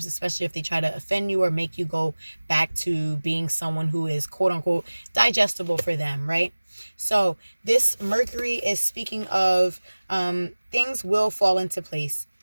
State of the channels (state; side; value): inverted; both; correlation -1.00